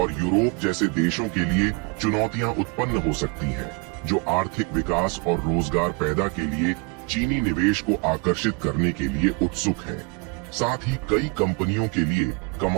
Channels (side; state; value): left; quieter; 31.4 dB